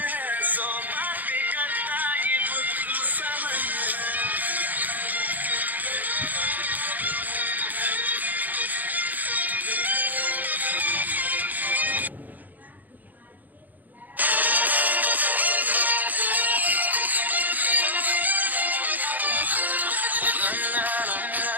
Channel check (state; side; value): late; left; 0.083 ms